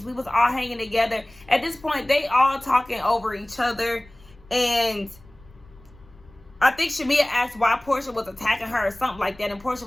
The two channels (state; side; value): noise; left; rumble, 25 dB below the sound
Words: We was all hanging together. At this point, they all talking over each other. And I think Shamia asked why Portia was attacking her or something like that. And Portia